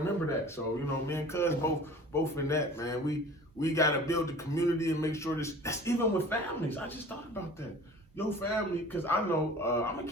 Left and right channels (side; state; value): both; normal; correlation 0.44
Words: that. So, me and Cuz both in that, man. We got to build the community and make sure that's even with families. I just thought about that. Your family, because I know, I'm going